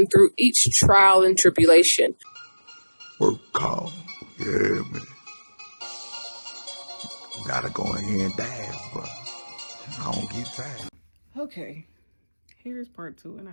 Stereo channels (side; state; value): both; inverted; correlation -1.00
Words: through each trial and tribulation. Work call. Yeah, man. Gotta go in here and dance, but I don't get tired. Okay, here's part two, and I